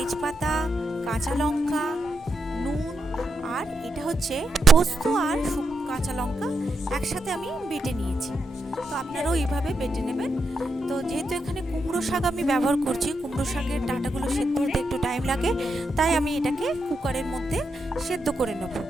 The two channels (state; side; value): normal; both; correlation 0.84